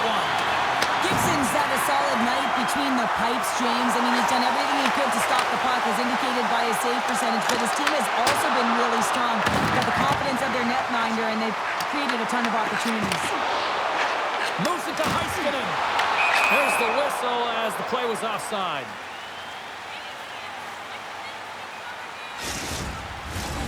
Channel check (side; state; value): both; identical; correlation 1.00